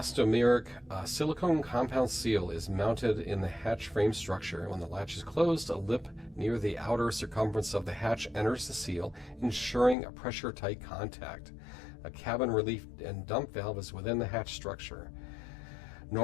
silicone compound seal is mounted in the hatch frame structure. When the latch is closed, a lip near the outer circumference of the hatch enters the seal, ensuring a pressure-tight contact. A cabin relief and dump valve is within the hatch structure.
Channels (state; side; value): drops out; right; at 10.0 s